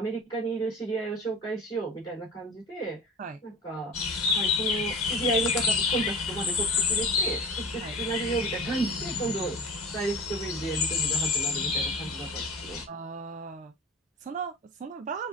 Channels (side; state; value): both; normal; correlation 0.33